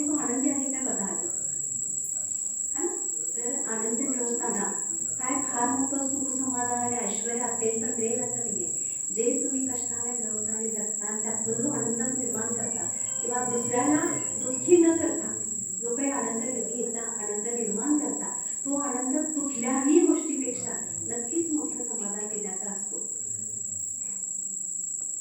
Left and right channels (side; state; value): both; identical; correlation 1.00